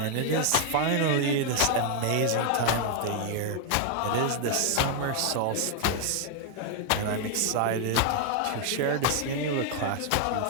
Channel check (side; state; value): both; different; correlation 0.00